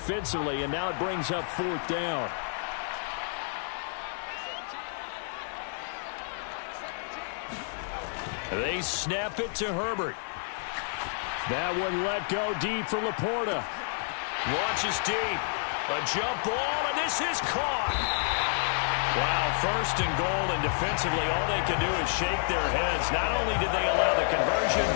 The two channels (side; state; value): right; silent; digital silence